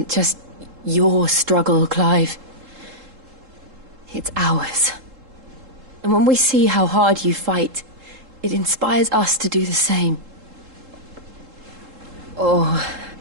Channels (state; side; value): late; left; 3.7 ms